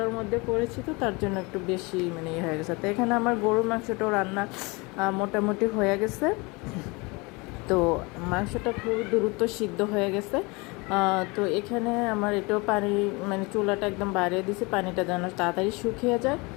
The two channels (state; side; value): quieter; right; 26.7 dB